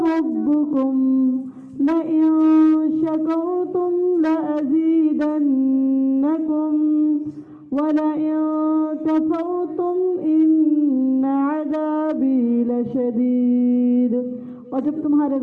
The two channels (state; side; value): identical; both; correlation 1.00